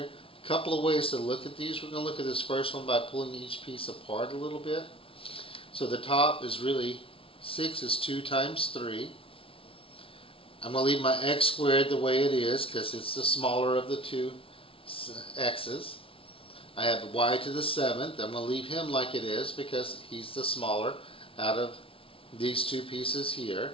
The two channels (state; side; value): late; right; 0.26 ms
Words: a couple of ways to look at these. We're going to look at this first one by pulling each piece apart a little bit. So the top is really 6 is 2 times 3. I'm going to leave my x squared the way it is because it's the smaller of the two x's. I have y to the 7th. I'm going to leave him like it is because he's the smaller out of these two pieces